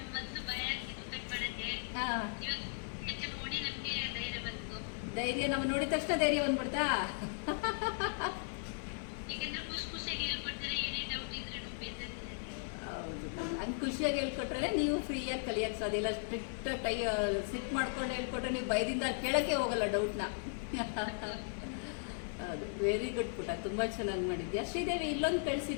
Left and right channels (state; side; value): silent; right; 53 dB below the other